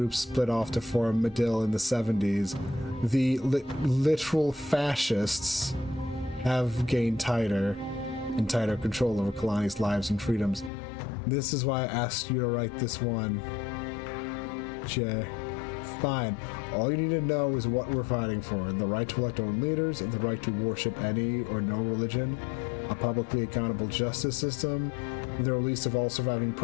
split off to form Medill in the 70s, the literal fascists have gained tighter control over Kalani's lives and freedoms. This is why I asked you to write this one. Jay. Fine. All you need to know is what we're fighting for. The right to elect our own leaders, the right to worship any or no religion, a publicly accountable justice system, the release of all surviving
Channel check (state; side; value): drops out; right; at 10.7 s